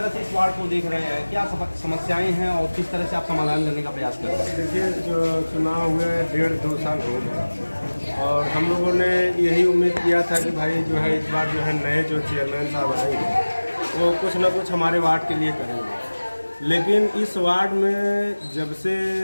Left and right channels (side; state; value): both; inverted; correlation -1.00